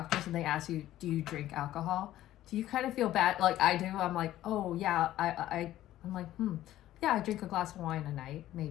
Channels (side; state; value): right; quieter; 13.8 dB